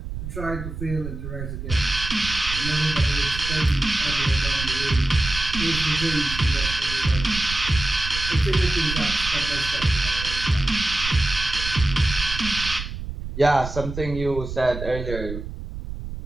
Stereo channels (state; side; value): noise; right; rumble, 8 dB below the sound